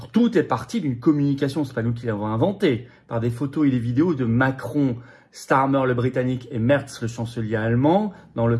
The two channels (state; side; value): identical; both; correlation 1.00